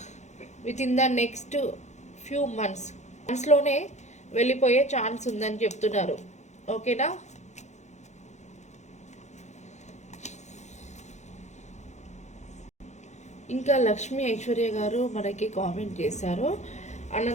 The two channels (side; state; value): right; late; 0.33 ms